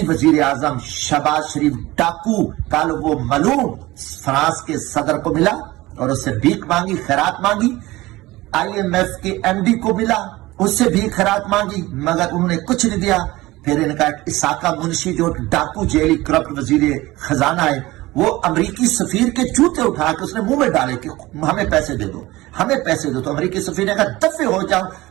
وزیر اعظم شہباز شریف ڈاکو کل وہ ملعون فرانس کے صدر کو ملا اور اس سے بھیک مانگی، خیرات مانگی. IMF کے MD کو ملا، اس سے بھی خیرات مانگی، مگر انہوں نے کچھ نہیں دیا. پھر ان کا اساقہ منشی جو ڈاکو جیلی کرپٹ وزیر خزانہ ہے، وہ امریکی سفیر کے جوتے اٹھا کے اس نے منہ میں ڈالے کہ ہمیں پیسے دے دو، ہمیں پیسے دو. تو امریکی سفیر نے کہا دفے ہو جاؤ،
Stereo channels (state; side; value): quieter; left; 19.1 dB